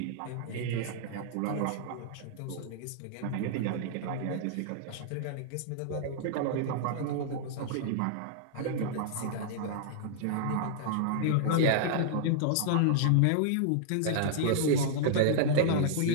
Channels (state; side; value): different; both; correlation -0.01